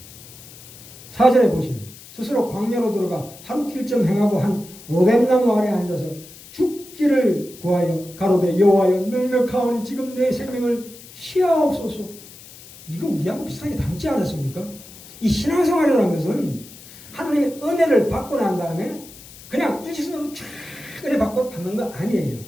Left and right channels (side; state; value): left; noise; hiss, 19 dB below the sound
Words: 4절에 보시면 스스로 광야로 들어가 하루 길쯤 행하고 한 로뎀나무 아래 앉아서 죽기를 구하여 가로되 여호와여 넉넉하오니 지금 내 생명을 취하옵소서. 이거 우리하고 비슷하게 닮지 않았습니까? 이 신앙생활이라는 것은 하나님의 은혜를 받고 난 다음에 그냥 일시적으로 쫙 은혜 받고 받는 거 아니에요.